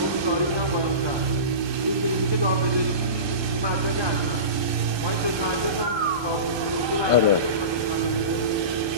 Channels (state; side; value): late; left; 1.3 ms